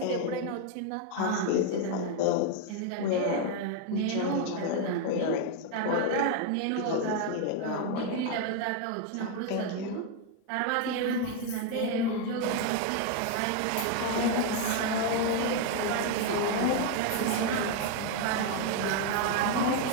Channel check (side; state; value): both; different; correlation 0.01